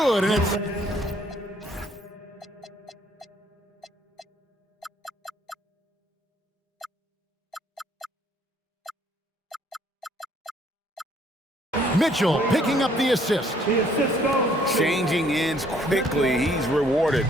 and it's... Mitchell picking up the assist. Changing ends quickly. He's rewarded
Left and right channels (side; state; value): both; normal; correlation 0.63